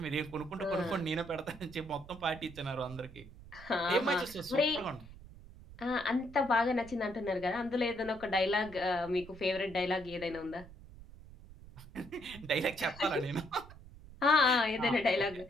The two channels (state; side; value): noise; right; rumble, 18 dB below the sound